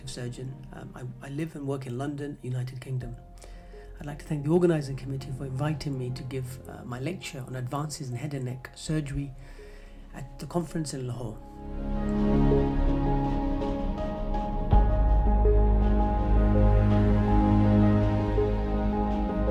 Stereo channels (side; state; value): both; identical; correlation 1.00